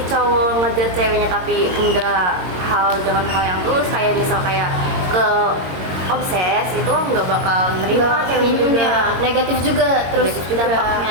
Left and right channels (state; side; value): late; left; 22 ms